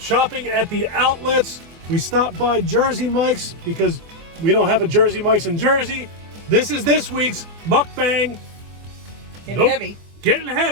at the outlets. We stopped by Jersey Mike's because we don't have a Jersey Mike's in Jersey. This is this week's mukbang. Getting heavy. Getting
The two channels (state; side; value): late; left; 24 ms